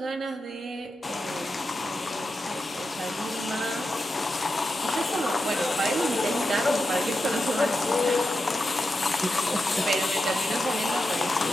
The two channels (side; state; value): both; normal; correlation 0.89